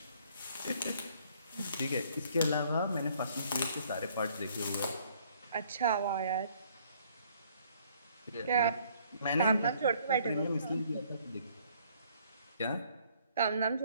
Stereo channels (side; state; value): both; inverted; correlation -0.62